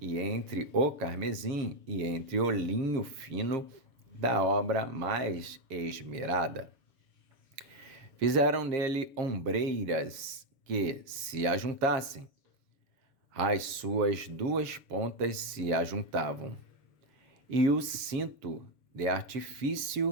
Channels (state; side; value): late; left; 7.0 ms